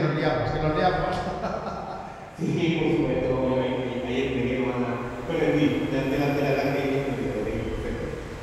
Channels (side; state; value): both; identical; correlation 1.00